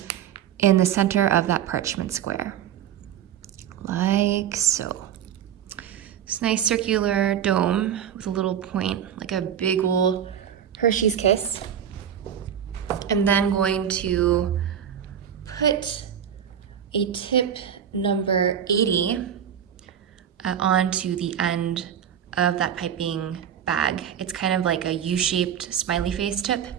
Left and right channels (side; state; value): left; quieter; 9.0 dB